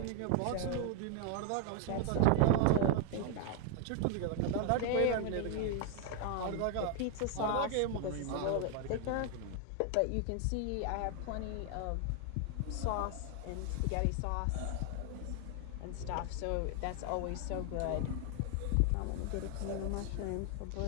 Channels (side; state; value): both; different; correlation 0.00